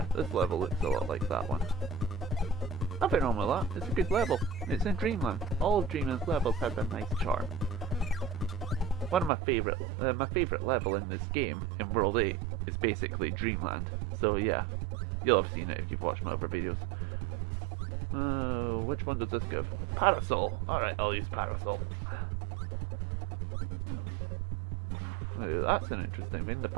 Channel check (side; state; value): left; drops out; at 9.3 s